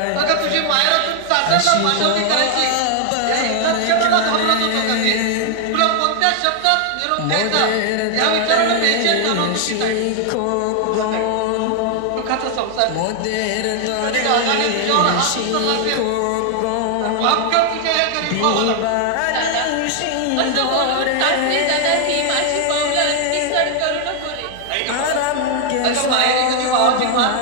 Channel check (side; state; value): both; different; correlation 0.00